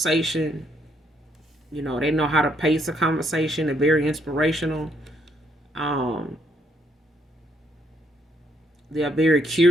You know, they know how to pace a conversation. They're very inspirational. Um, they're very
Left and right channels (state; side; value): normal; both; correlation 0.72